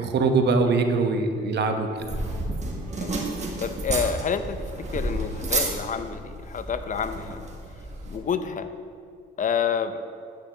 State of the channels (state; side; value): normal; both; correlation 0.37